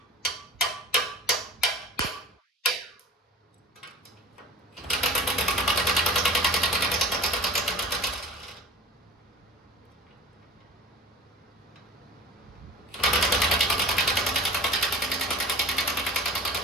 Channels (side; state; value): both; normal; correlation 0.39